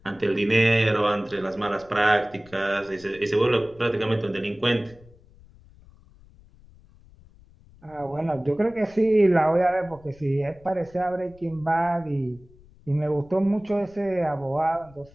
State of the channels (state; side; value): noise; left; rumble, 25 dB below the sound